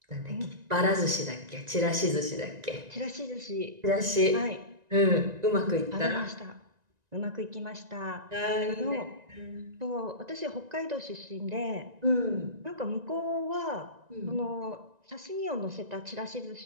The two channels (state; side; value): late; left; 1.9 ms